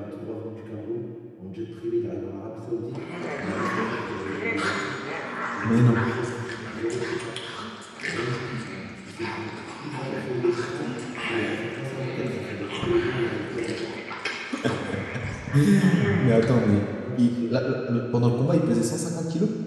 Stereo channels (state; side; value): identical; both; correlation 1.00